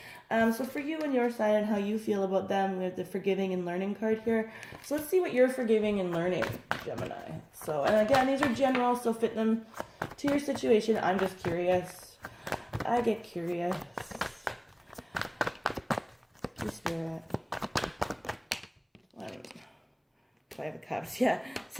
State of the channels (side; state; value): both; identical; correlation 1.00